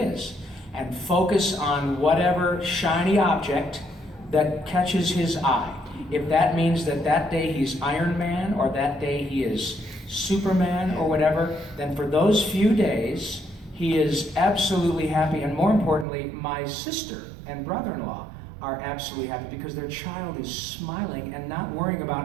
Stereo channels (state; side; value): drops out; left; at 16.1 s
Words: and focus on whatever shiny object that catches his eye. If that means that day he's Iron Man or that day he is Superman or whatever, then for those few days he is absolutely happy. And more importantly, my sister and brother-in-law are absolutely happy because their child is smiling and not worrying